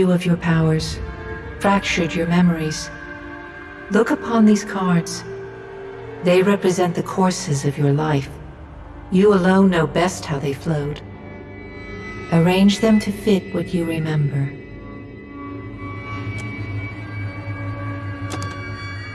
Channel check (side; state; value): both; identical; correlation 1.00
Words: of your powers, fractured your memories. Look upon these cards. They represent the courses of your life. You alone know best how they flowed. Arrange them to fit what you remember.